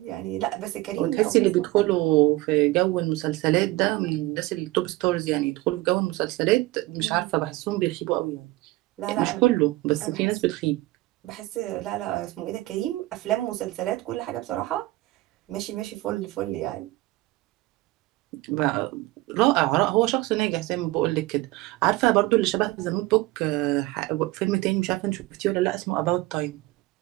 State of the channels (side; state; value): left; quieter; 19.2 dB